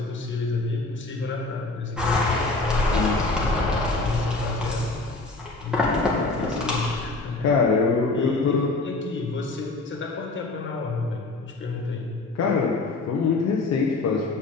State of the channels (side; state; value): right; quieter; 3.3 dB